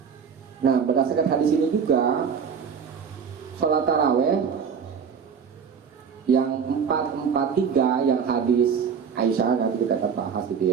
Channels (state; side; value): quieter; left; 6.7 dB